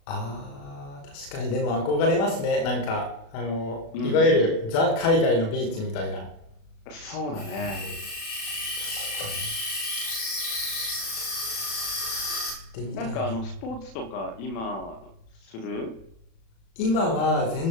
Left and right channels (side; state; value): right; late; 36 ms